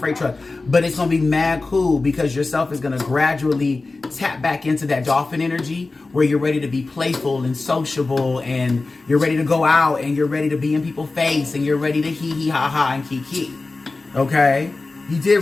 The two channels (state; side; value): quieter; right; 3.5 dB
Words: truck. But it's going to be mad cool, because yourself is going to gradually tap back into that dolphin energy where you're ready to be playful and sociable, and you're ready to go out, and you're ready to be in people's face, and you're ready to hee hee ha ha and kiki. Okay? You did